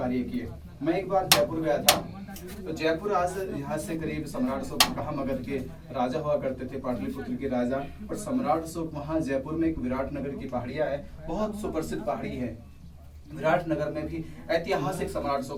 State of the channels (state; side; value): identical; both; correlation 1.00